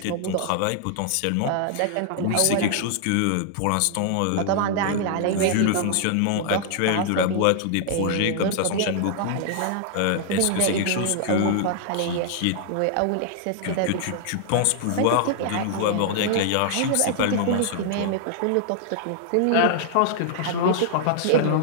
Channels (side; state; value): both; different; correlation -0.01